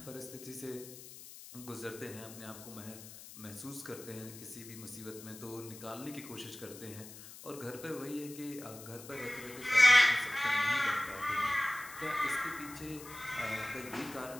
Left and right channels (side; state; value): left; noise; hiss, 15 dB below the sound